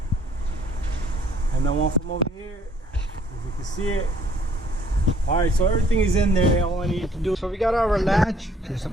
and then one from over here, if you can see it. All right, so everything is in there. All I need to do, so we got our latch. There's a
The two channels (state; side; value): normal; both; correlation 0.62